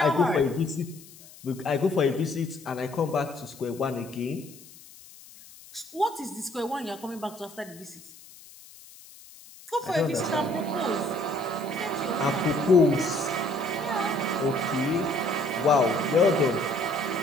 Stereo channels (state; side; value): noise; left; hiss, 21 dB below the sound